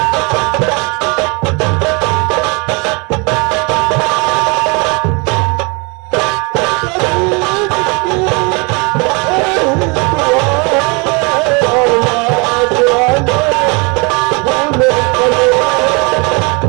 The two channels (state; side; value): quieter; left; 30.4 dB